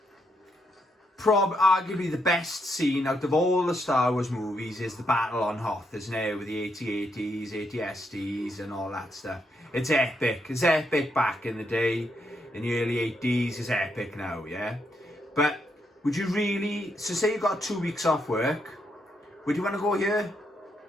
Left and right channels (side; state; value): both; normal; correlation 0.78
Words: arguably the best scene out of all the Star Wars movies is the battle on Hoth, isn't it? With the AT-ATs, AT-STs and all that stuff. It's epic. It's epic back in the day. In the early 80s, it's epic now, yeah? But would you really... So say you got 2 weeks off work, would you want to go here?